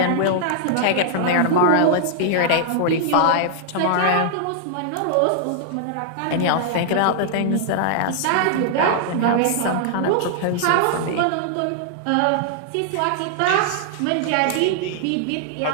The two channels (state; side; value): different; both; correlation -0.01